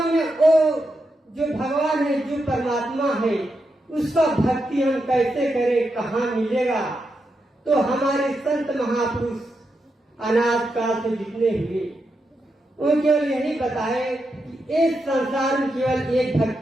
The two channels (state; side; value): normal; both; correlation 0.85